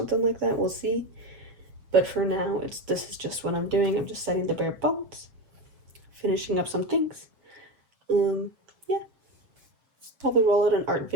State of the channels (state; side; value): late; left; 7.0 ms